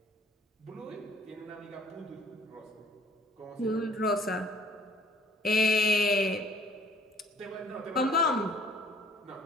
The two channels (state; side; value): normal; both; correlation 0.56